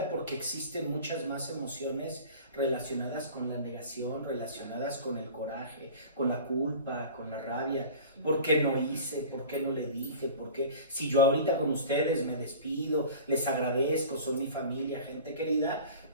porque existen muchas más emociones relacionadas con la negación, relacionadas con el coraje, con la culpa, con la rabia. ¿Por qué no hice? ¿Por qué no le dije? ¿Por qué? Si yo ahorita con ustedes me despido, les agradezco, son mi familia, gente querida,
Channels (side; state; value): both; inverted; correlation -0.40